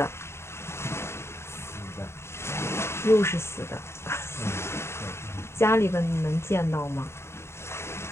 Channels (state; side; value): late; right; 0.13 ms